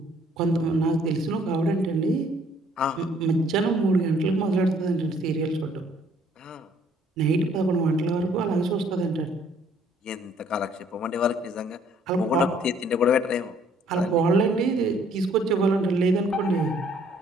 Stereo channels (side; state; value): both; normal; correlation 0.61